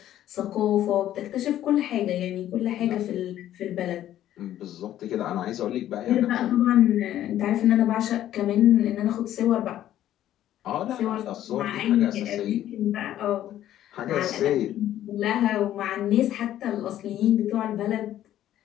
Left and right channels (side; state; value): right; quieter; 12.3 dB